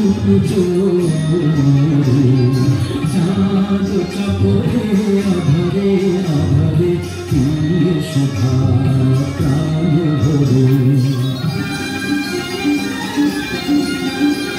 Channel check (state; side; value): identical; both; correlation 1.00